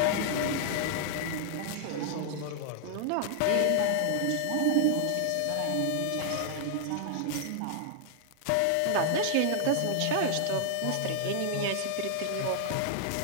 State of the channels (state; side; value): different; both; correlation 0.00